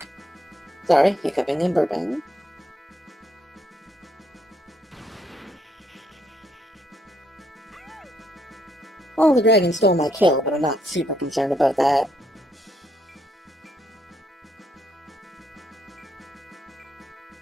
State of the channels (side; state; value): both; normal; correlation 0.73